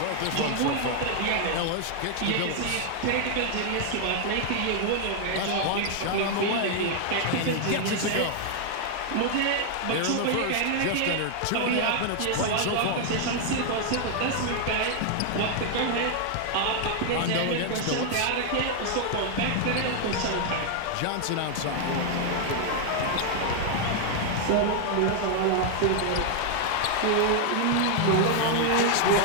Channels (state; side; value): different; both; correlation 0.00